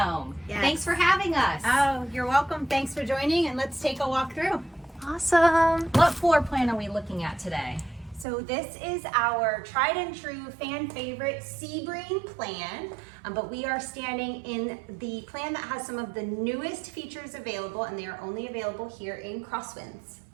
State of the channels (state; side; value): drops out; left; at 8.2 s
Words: Yes. Thanks for having us. Oh, you're welcome. Thanks for joining, and let's take a walk through. Awesome. What floor plan are we looking at today? So this is our tried and true fan favorite Sebring plan, but we are standing in the plan that has some of the newest features available, and they are only available here in Crosswinds.